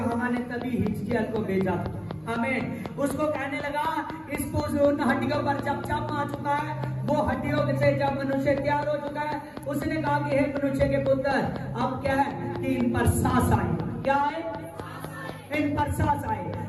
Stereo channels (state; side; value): identical; both; correlation 1.00